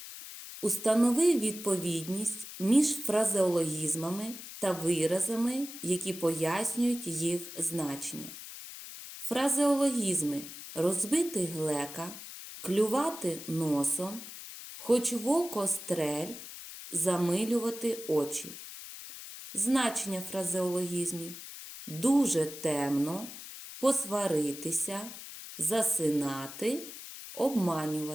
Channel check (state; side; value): noise; left; hiss, 12 dB below the sound